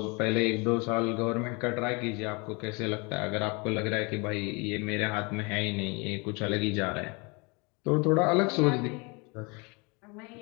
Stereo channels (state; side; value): quieter; right; 29.6 dB